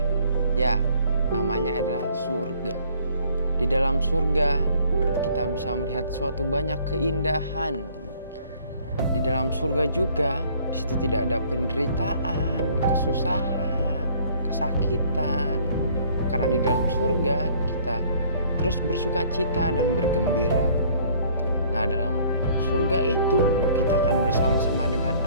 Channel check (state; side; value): inverted; both; correlation -0.58